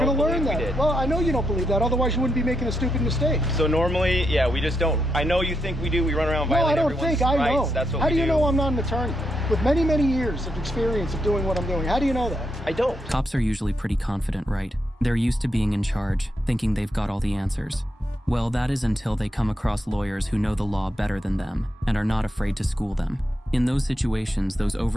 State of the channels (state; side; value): normal; both; correlation 0.82